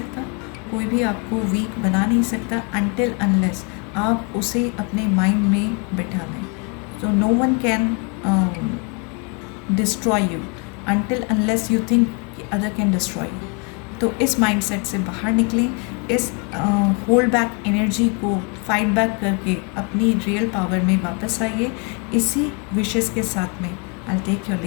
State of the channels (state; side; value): quieter; right; 34.8 dB